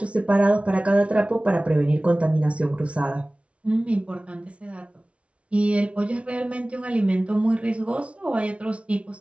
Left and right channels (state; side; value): late; left; 0.062 ms